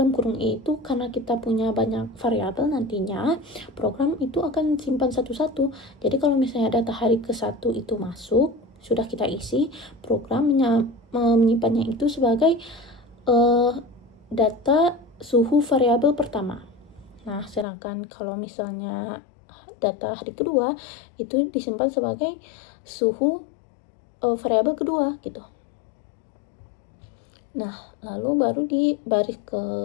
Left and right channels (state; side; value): drops out; right; at 17.7 s